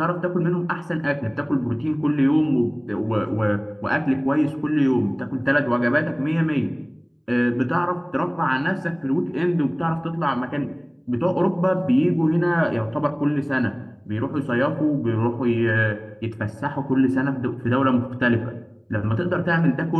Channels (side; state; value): both; identical; correlation 1.00